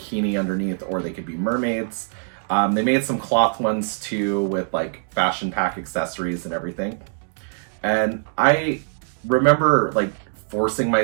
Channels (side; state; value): left; silent; 60 dB below the other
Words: underneath, or they could be mermaids. They made some cloth ones too with like fashion pack accessories and everything. And I remember like forcing